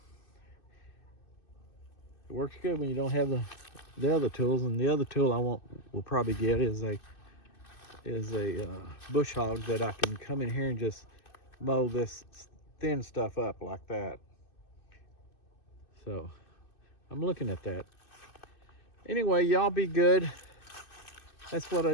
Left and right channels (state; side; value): late; right; 2.6 ms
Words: It works good when you don't have the other tools, and the other tool will probably get is a bush hog that I can come in here and just mow this thin stuff up like that. So I'm looking at that. Anyway, y'all be good. That's what I